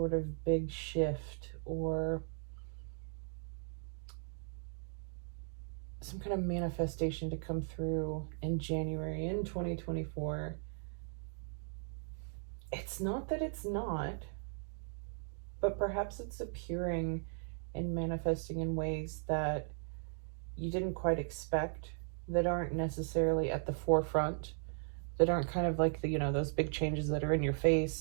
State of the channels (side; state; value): left; silent; 53 dB below the other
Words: of big shift or some kind of manifestation to come through in January in 2024, it's not that it's not, but perhaps it's appearing and manifesting in ways that you didn't quite expect, that aren't necessarily at the forefront, that aren't kind of like the, those big changes that are in your